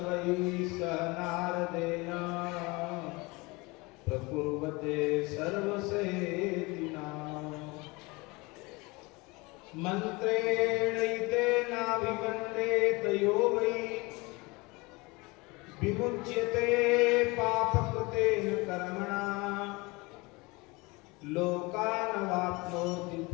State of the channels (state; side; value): quieter; right; 24.8 dB